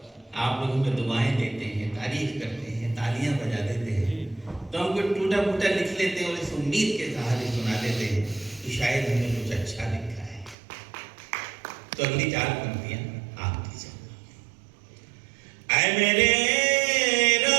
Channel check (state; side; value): drops out; left; at 10.6 s